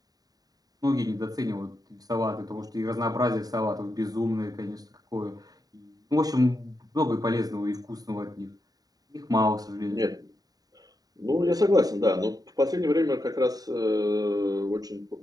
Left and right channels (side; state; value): left; late; 0.18 ms